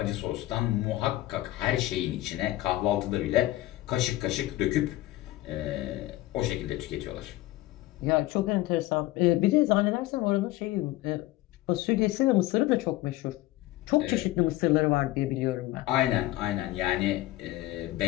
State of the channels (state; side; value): quieter; right; 17.1 dB